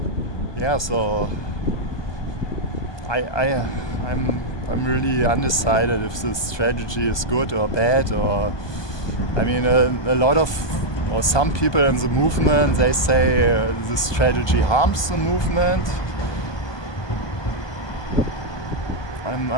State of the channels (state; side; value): late; right; 1.2 ms